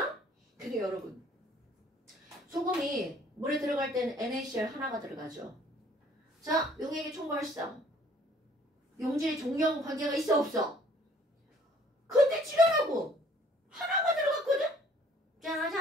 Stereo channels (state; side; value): normal; both; correlation 0.58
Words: 근데 여러분, 소금이 물에 들어갈 때는 NaCl 하나가 들어가죠. 자, 용액의 총괄성. 용질의 종류하고 관계가 있어 없어? 근데 지랄하고 하나가 들어갔거든?